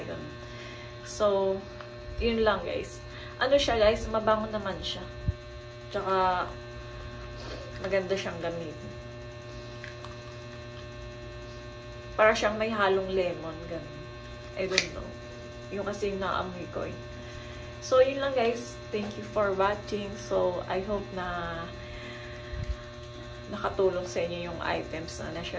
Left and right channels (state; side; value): identical; both; correlation 1.00